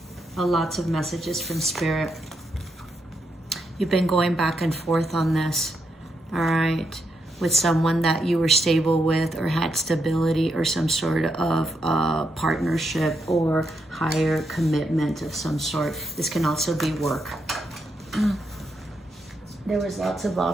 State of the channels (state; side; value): normal; both; correlation 0.81